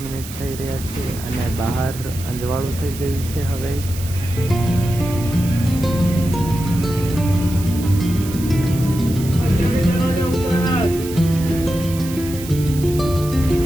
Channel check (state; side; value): noise; right; hiss, 13 dB below the sound